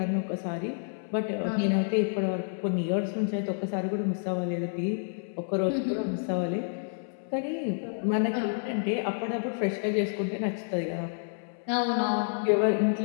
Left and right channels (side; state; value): right; silent; 58 dB below the other